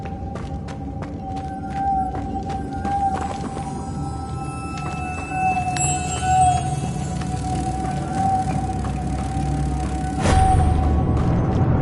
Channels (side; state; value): both; identical; correlation 1.00